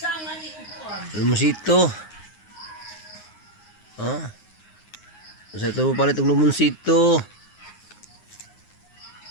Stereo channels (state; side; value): late; right; 9.6 ms